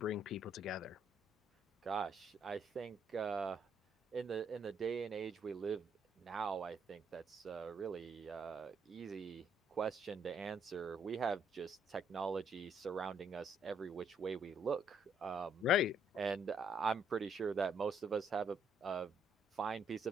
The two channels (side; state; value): both; normal; correlation 0.70